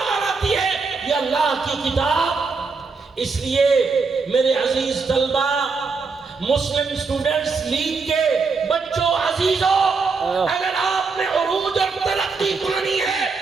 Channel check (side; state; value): left; quieter; 4.6 dB